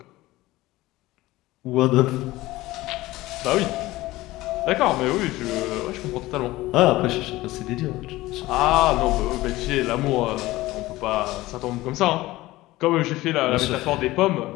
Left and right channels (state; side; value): quieter; right; 18.2 dB